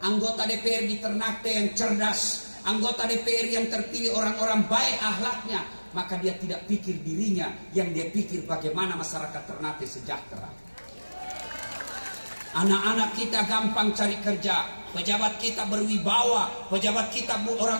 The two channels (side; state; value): both; inverted; correlation -1.00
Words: anggota DPR di Ternate yang cerdas, anggota DPR yang terpilih orang-orang baik akhlaknya, maka dia tidak pikir dirinya, yang dia pikir bagaimana masyarakat Ternate sejahtera. Anak-anak kita gampang cari kerja, pejabat kita berwibawa, pejabat kita